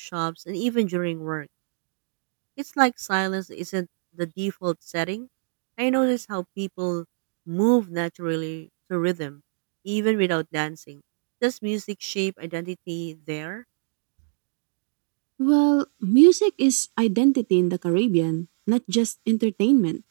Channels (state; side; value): silent; left; digital silence